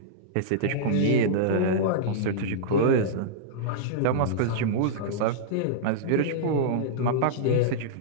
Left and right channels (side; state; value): both; different; correlation -0.03